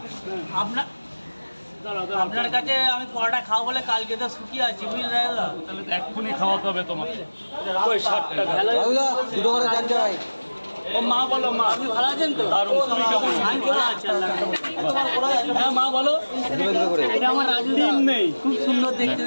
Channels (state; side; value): inverted; both; correlation -1.00